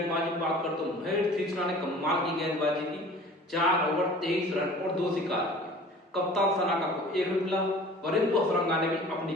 बात करते तो महेश तीक्ष्णा ने कमाल की गेंदबाजी की। 4 ओवर 23 रन और 2 शिकार किए। कप्तान सनाका को 1 विकेट मिला। वरिंदु हसरंगा ने भी अपनी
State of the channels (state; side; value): normal; both; correlation 0.45